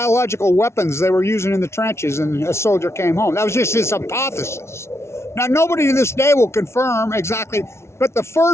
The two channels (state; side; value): late; right; 0.13 ms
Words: weapons they were using in the trenches, and a soldier came home. That was just his hypothesis. Now, nobody to this day will confirm exactly, but the